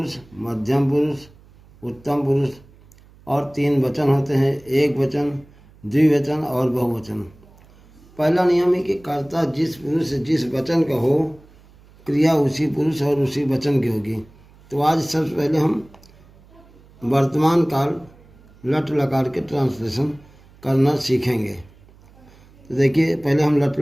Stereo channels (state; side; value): noise; right; hum, 26 dB below the sound